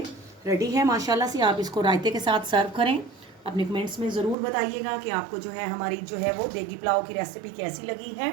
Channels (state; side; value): drops out; left; at 4.4 s